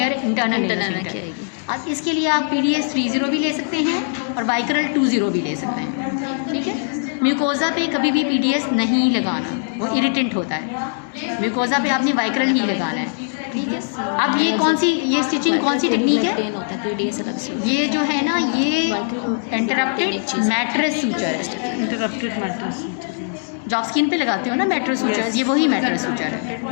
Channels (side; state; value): right; silent; digital silence